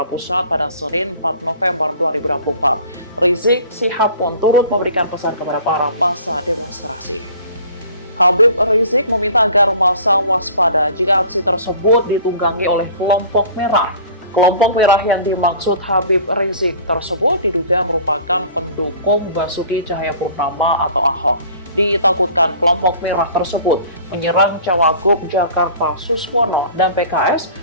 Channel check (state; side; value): inverted; both; correlation -0.47